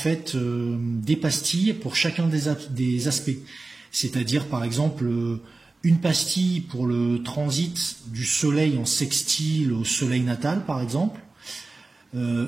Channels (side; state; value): left; quieter; 3.4 dB